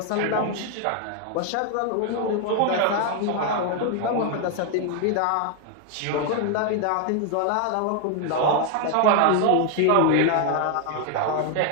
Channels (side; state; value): both; different; correlation 0.00